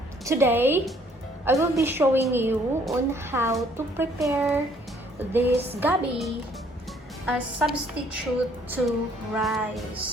Today, I will be showing you on how to prepare this gabi as substitute to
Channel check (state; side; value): normal; both; correlation 0.62